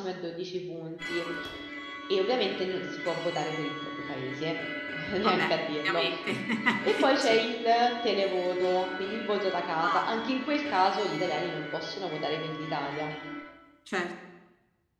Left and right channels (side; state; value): both; identical; correlation 1.00